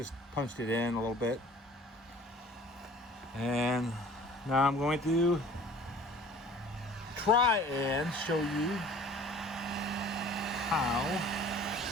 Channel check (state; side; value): normal; both; correlation 0.48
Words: punched it in a little bit. And now I'm going to try and show you how.